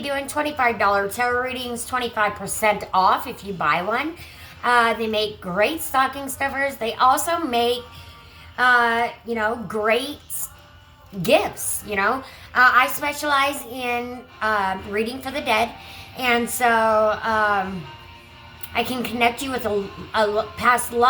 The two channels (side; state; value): both; identical; correlation 1.00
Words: $25 tarot readings, 25% off if you buy one. They make great stocking stuffers. They also make, great gifts, I specialize in reading for the dead. And so I can connect you with a past